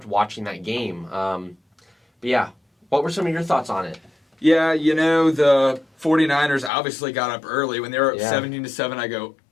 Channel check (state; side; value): drops out; right; at 6.7 s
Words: watching that game. But yeah, what were some of your thoughts on it? Yeah, the 49ers obviously got up early. When they were up 17-7, I go,